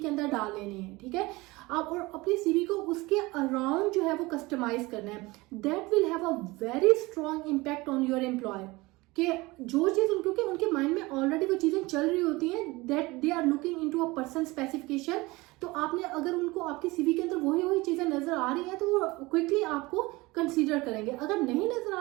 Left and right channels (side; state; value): left; quieter; 22.0 dB